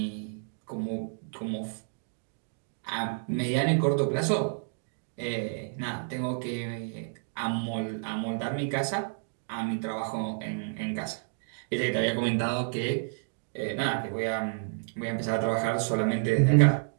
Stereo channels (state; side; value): silent; left; digital silence